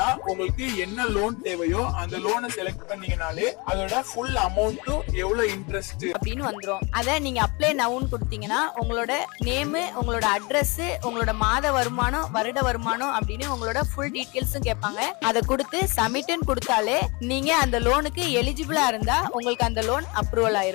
உங்களுக்கு என்ன லோன் தேவையோ அந்த லோனை செலக்ட் பண்ணீங்கனாலே அதோட ஃபுல் அமௌண்ட் எவ்வளவு இன்ட்ரெஸ்ட் அப்படின்னு வந்துரும். அத நீங்க அப்ளை நவுன்னு கொடுத்தீங்கன்னா உங்களோட நேம், உங்களோட அட்ரஸ், உங்களோட மாத வருமானம், வருட வருமானம் அப்படின்னு உங்களோட ஃபுல் டீடைல்ஸும் கேட்பாங்க. அதை கொடுத்து சப்மிட்னு கொடுத்தாலே நீங்க அந்த லோனுக்கு எலிஜிபிளா இருந்தா உங்களுக்கு அந்த லோன் அப்ரூவல்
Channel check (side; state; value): right; quieter; 27.9 dB